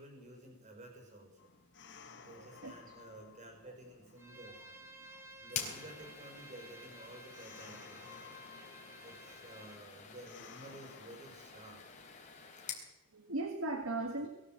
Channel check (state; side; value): normal; both; correlation 0.07